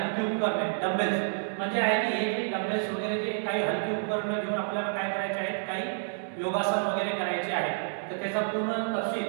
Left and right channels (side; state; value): left; silent; digital silence